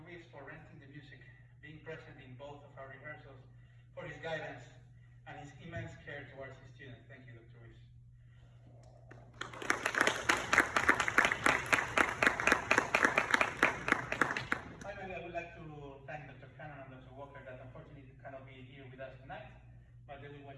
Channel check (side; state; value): both; identical; correlation 1.00